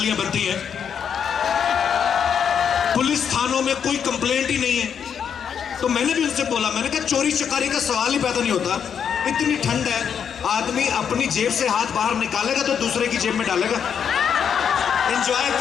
बनती हैं। पुलिस थानों में कोई कंप्लेंट ही नहीं है। तो मैंने भी उनसे बोला, मैंने कहा चोरी चकारी का सवाल ही पैदा नहीं होता, इतनी ठंड है, आदमी अपनी जेब से हाथ बाहर निकालेगा तो दूसरे की जेब में डालेगा। एंजॉय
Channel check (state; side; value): quieter; right; 7.7 dB